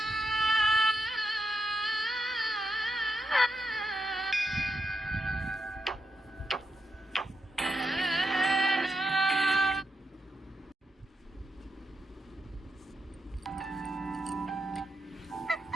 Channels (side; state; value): both; normal; correlation 0.85